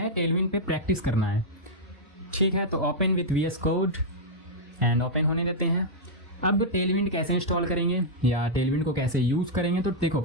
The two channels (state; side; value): normal; both; correlation -0.06